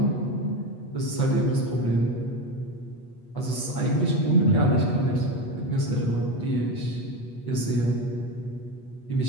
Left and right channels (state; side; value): late; right; 8.2 ms